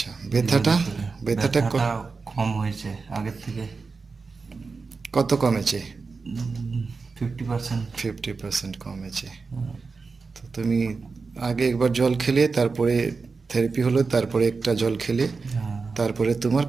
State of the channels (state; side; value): quieter; left; 4.5 dB